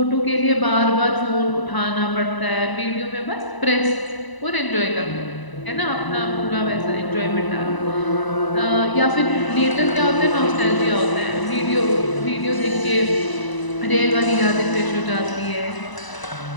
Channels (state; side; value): late; right; 1.0 ms